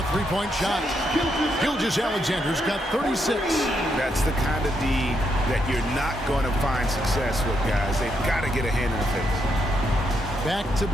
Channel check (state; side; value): normal; both; correlation 0.79